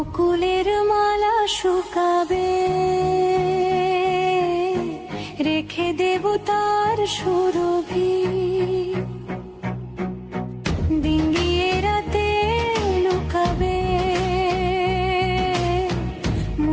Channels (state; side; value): identical; both; correlation 1.00